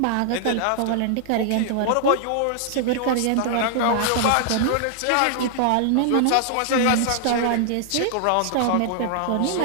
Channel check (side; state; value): both; different; correlation -0.01